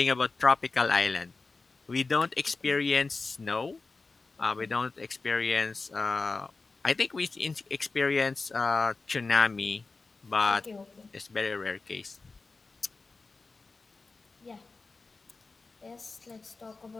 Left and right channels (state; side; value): quieter; right; 3.9 dB